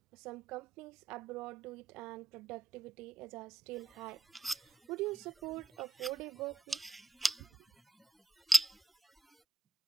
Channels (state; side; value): quieter; left; 3.5 dB